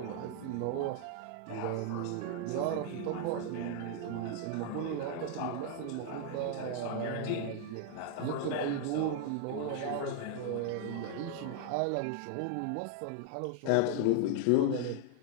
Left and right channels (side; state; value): both; different; correlation 0.00